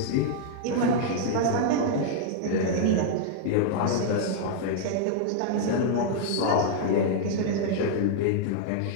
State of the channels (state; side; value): different; both; correlation -0.01